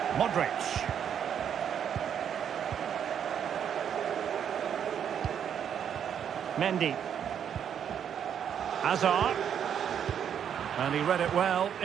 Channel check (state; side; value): quieter; left; 8.6 dB